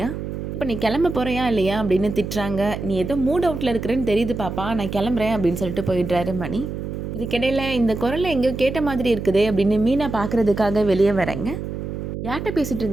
இப்போ நீ கிளம்ப போகிறியா இல்லையா அப்படின்னு திட்டுறாங்க. நீ ஏதோ மூட் அவுட்டில் இருக்கிறேன்னு தெரியுது பாப்பா, நான் கிளம்புறேன் அப்படின்னு சொல்லிட்டு போயிடுறாரு மணி. இதுக்கிடையில் இந்த குரலை எங்கேயோ கேட்ட மாதிரி இருக்குதே அப்படின்னு மீனா பார்க்குறதுக்காக வெளியே வரேங்க. யார்கிட்ட பேசிகிட்டு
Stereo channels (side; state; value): right; noise; hum, 6 dB below the sound